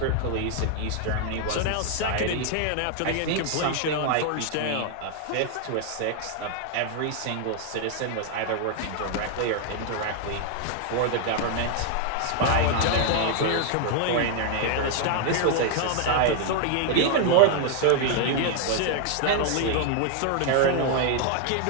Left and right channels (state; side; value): different; both; correlation 0.00